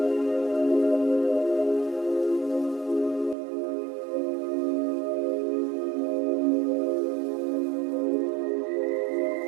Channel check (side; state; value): left; drops out; at 3.4 s